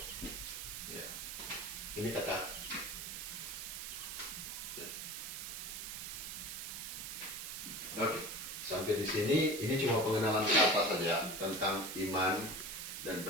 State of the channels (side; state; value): right; noise; hiss, 6 dB below the sound